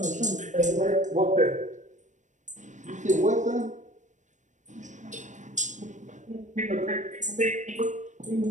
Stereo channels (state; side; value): late; left; 0.35 ms